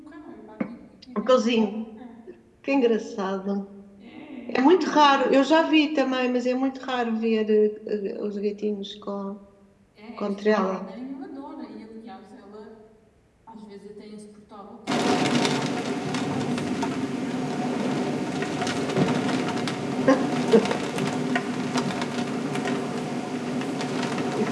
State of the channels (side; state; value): both; identical; correlation 1.00